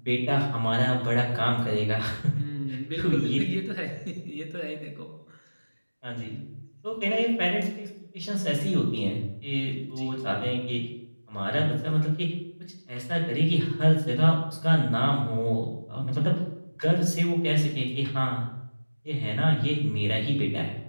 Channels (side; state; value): both; inverted; correlation -1.00